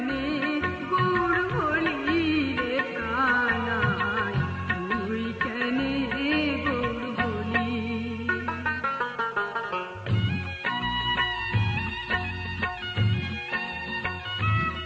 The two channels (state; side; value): identical; both; correlation 1.00